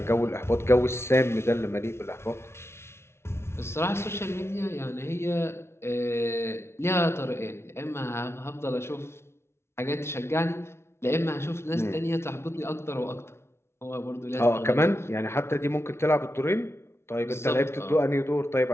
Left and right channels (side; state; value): right; late; 0.12 ms